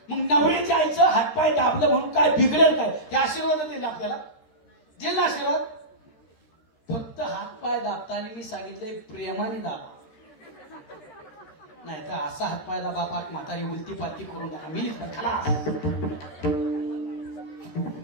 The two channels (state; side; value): late; right; 13 ms